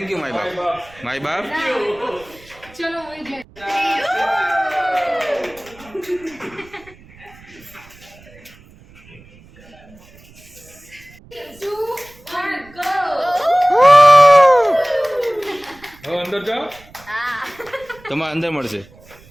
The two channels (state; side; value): noise; right; rumble, 24 dB below the sound